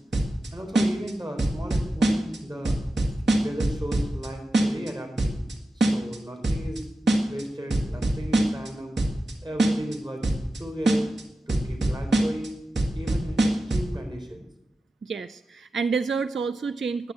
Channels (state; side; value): normal; both; correlation 0.92